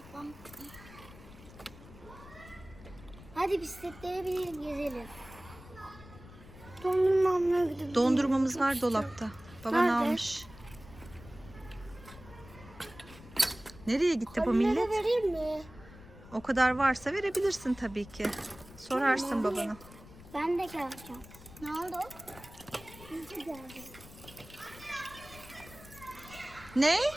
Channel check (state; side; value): noise; left; rumble, 19 dB below the sound